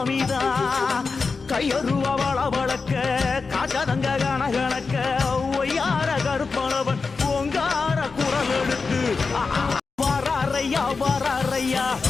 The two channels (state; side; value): quieter; right; 4.5 dB